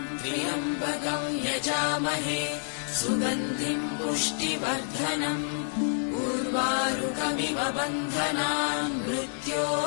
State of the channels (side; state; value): right; silent; digital silence